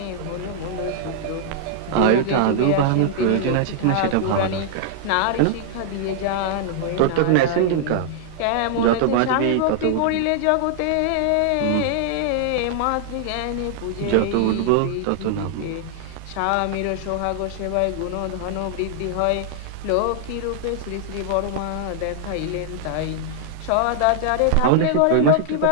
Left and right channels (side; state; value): both; different; correlation -0.01